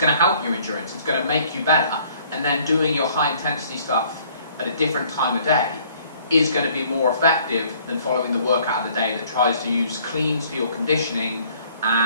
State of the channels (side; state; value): both; inverted; correlation -0.59